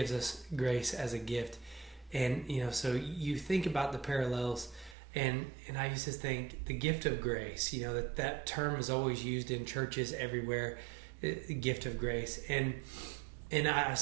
us grace as a gift. And, so you think about the parallels, and I used to think the gift of grace, that term is always used in churches everywhere, the gift of grace. And I was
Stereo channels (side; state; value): left; drops out; at 5.0 s